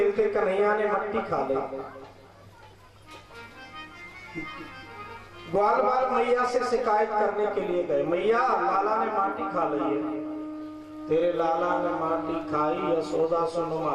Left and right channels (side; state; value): both; identical; correlation 1.00